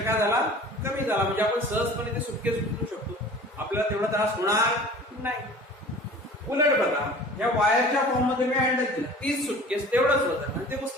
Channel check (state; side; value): normal; both; correlation 0.44